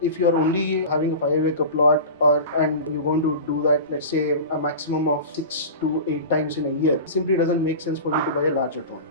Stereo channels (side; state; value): both; inverted; correlation -0.31